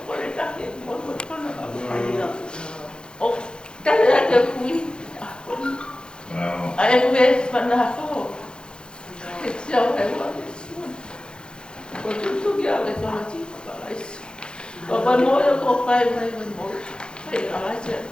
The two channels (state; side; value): late; right; 0.049 ms